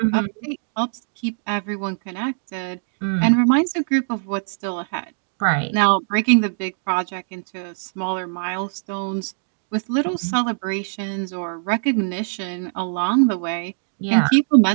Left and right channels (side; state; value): left; silent; digital silence